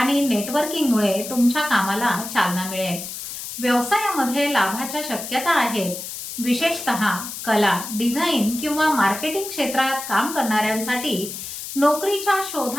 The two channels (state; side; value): noise; left; hiss, 8 dB below the sound